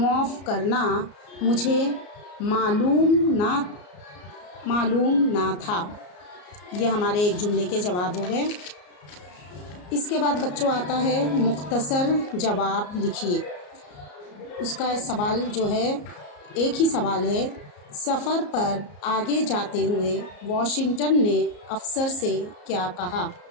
करना, मुझे मालूम ना था। ये हमारे एक जुमले के जवाब हो गए। इसके बाद बच्चों आता है मुख्तसर जवाब लिखिए। उसका सवाल जो है, एक ही सवाल है, सफ़र पर आगे जाते हुए वॉशिंगटन ने अफसर से क्या कहा?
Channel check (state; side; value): late; right; 34 ms